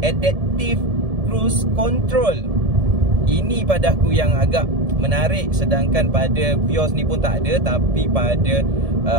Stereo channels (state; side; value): late; left; 1.7 ms